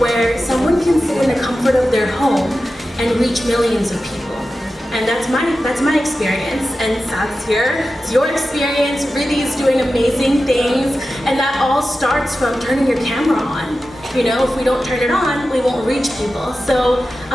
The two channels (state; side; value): normal; both; correlation 0.93